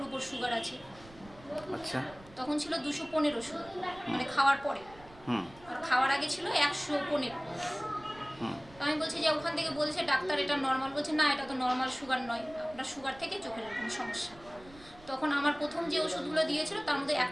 উপর সুগার আছে। আচ্ছা। তখন ছিল 215 সুগার, মানে খাওয়ার পরে। হুম। আর খাওয়ার আগে ছিল 115। হুম। আমি বলছি যে ওখান থেকে বলছে ডাক্তার এটা নর্মাল, বলছে না এটা তো নর্মাল সুগার নয়, আপনার সুগার থেকে চোখের এরকম সমস্যা। তখন আমার প্রথম যে ওষুধগুলো দিয়েছিল তার মধ্যে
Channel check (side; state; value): right; noise; rumble, 22 dB below the sound